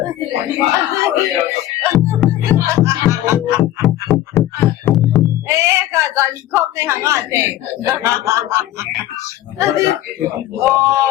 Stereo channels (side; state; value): right; quieter; 13.9 dB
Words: 哎，个在你空内行啊，对。哦。